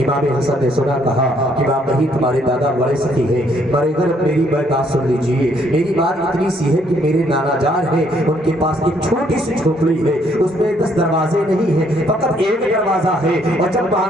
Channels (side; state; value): both; normal; correlation 0.68